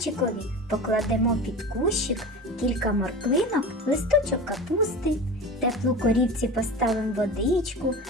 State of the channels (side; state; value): both; normal; correlation 0.31